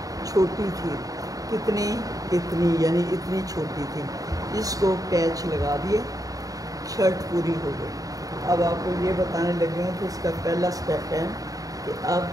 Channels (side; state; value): left; late; 0.17 ms